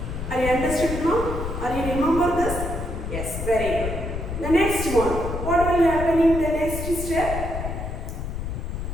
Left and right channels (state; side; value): noise; left; rumble, 5 dB below the sound